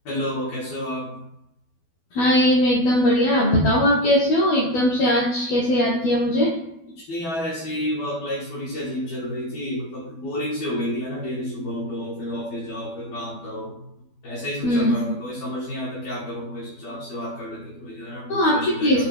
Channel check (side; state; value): right; late; 12 ms